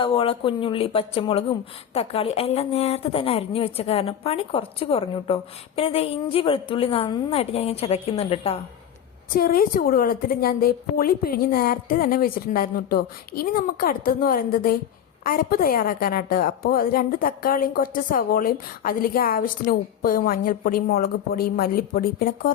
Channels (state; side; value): quieter; right; 9.4 dB